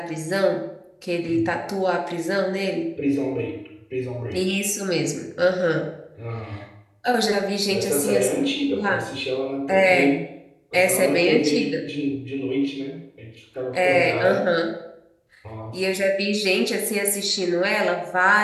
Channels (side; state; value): both; identical; correlation 1.00